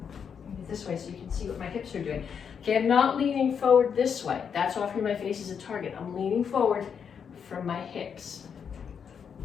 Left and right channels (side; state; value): right; quieter; 7.1 dB